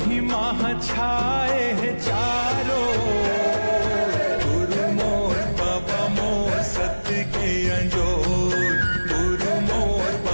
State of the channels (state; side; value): inverted; both; correlation -1.00